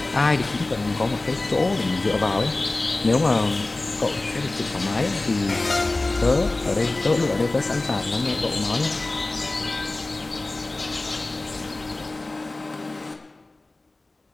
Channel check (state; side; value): quieter; right; 3.0 dB